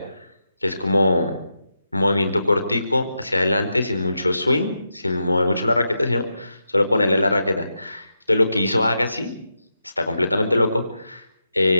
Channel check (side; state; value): both; inverted; correlation -0.86